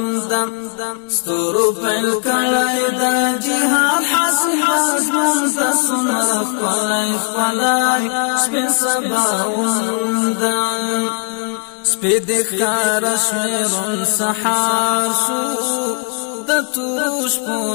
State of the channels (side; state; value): right; quieter; 37.7 dB